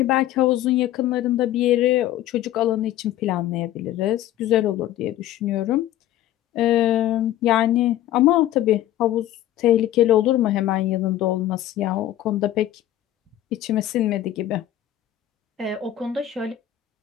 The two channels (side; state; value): right; quieter; 13.1 dB